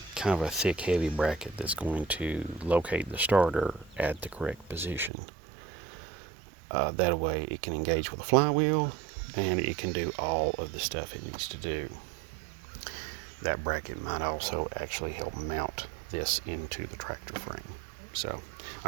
of a thick, heavy bracket that's going to locate the starter at the correct position. That way it can engage with the flywheel and it can do all of the stuff it needs to do. That bracket might also actually help mount this into the tractor frame. So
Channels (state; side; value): drops out; left; at 5.1 s